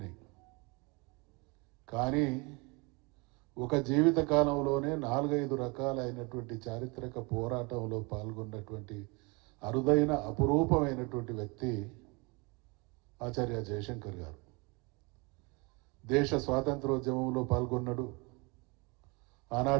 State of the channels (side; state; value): left; quieter; 28.8 dB